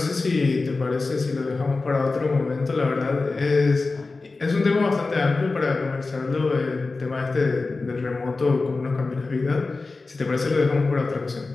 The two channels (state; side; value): quieter; right; 3.7 dB